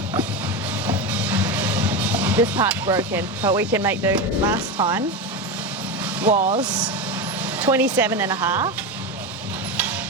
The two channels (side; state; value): both; normal; correlation 0.17